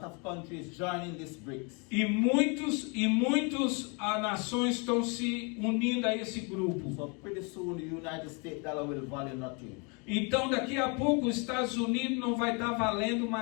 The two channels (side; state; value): right; quieter; 33.2 dB